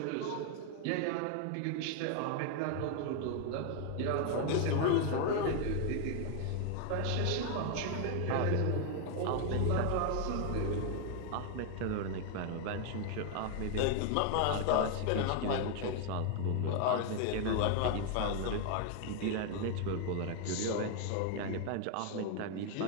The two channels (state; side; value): different; both; correlation 0.00